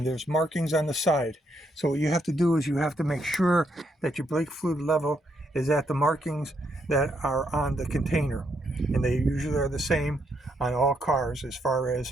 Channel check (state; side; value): normal; both; correlation 0.76